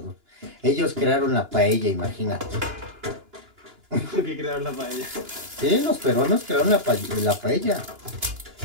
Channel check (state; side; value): late; left; 2.9 ms